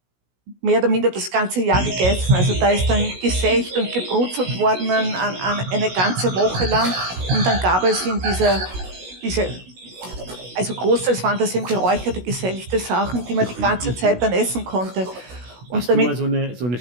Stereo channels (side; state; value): left; late; 16 ms